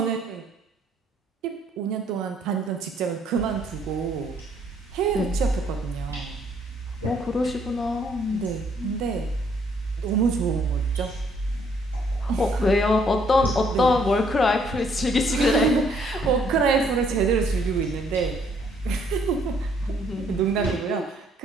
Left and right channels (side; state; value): both; normal; correlation 0.66